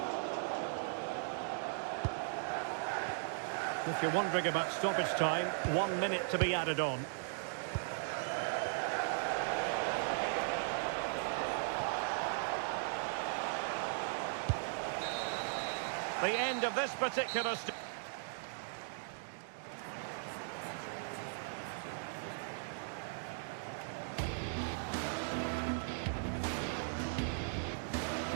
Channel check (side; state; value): left; silent; digital silence